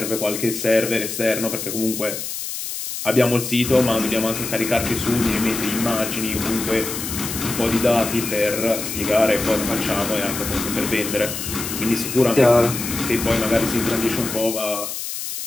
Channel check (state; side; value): noise; left; hiss, 6 dB below the sound